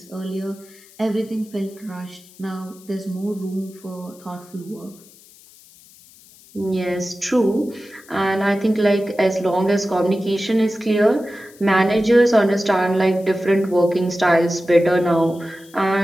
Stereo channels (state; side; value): noise; left; hiss, 25 dB below the sound